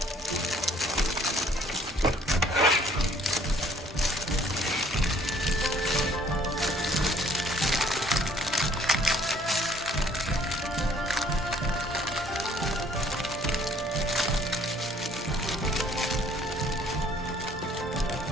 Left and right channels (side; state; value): both; normal; correlation 0.59